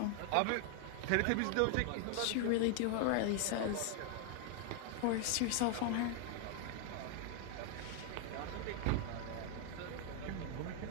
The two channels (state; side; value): different; both; correlation 0.00